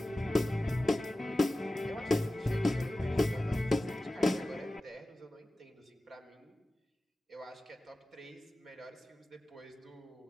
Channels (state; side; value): normal; both; correlation 0.96